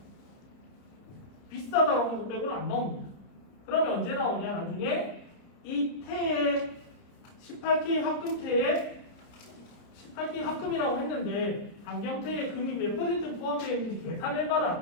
비싸다라는 것 빼고는 안 나옵니다. 그러면 언제 나오냐? 나중에 이 태의 18K 합금태에 18K 합금이라고 했는데 안경태의 금이 몇 퍼센트 포함되어 있는지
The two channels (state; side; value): late; right; 30 ms